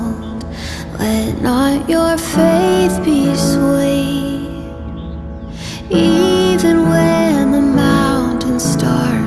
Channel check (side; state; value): both; identical; correlation 1.00